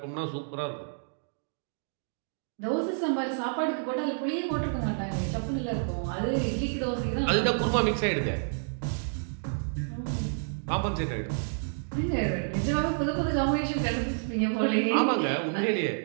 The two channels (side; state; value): left; silent; digital silence